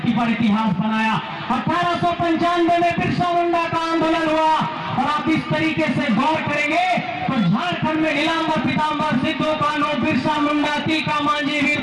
पर इतिहास बनाया। 1895 में बिरसा मुंडा का आंदोलन हुआ। और आप इस तरीके से गौर करेंगे तो झारखंड में नीलांबर पीतांबर, सिद्धू कानू, बिरसा मुंडा, तिलका मांझी, वीर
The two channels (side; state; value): both; identical; correlation 1.00